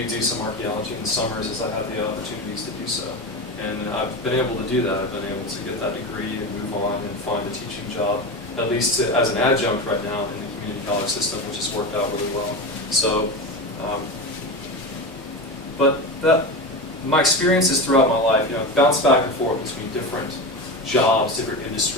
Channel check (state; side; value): normal; both; correlation 0.23